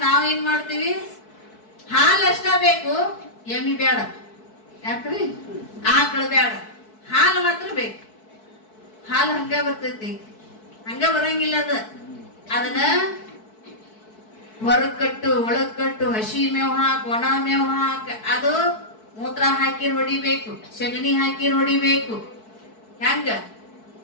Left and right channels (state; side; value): late; right; 4.6 ms